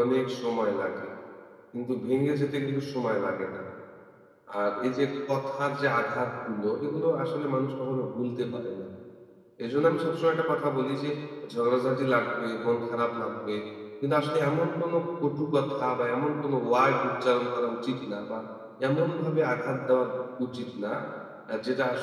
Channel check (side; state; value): both; identical; correlation 1.00